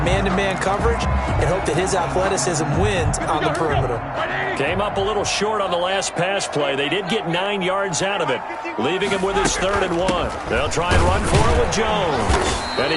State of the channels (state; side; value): identical; both; correlation 1.00